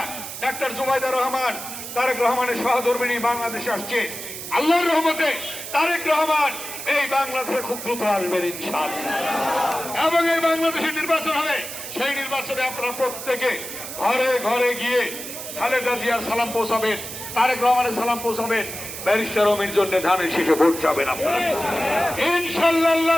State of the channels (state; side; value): noise; right; hiss, 9 dB below the sound